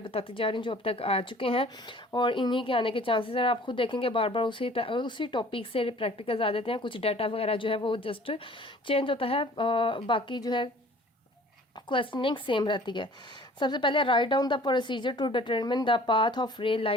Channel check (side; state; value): both; normal; correlation 0.50